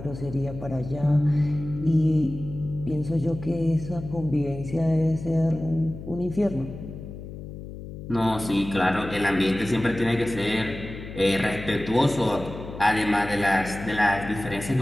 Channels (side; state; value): left; noise; hum, 11 dB below the sound